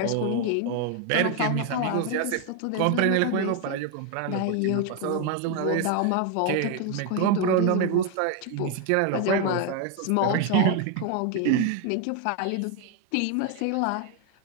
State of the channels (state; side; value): different; both; correlation 0.01